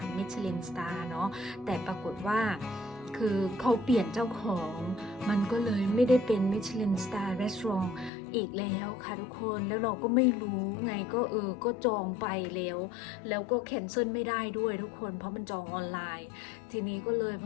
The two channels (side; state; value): right; drops out; at 8.1 s